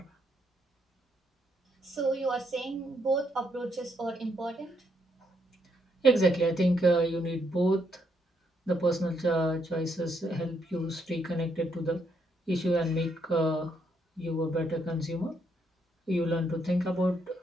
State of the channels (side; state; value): both; normal; correlation 0.75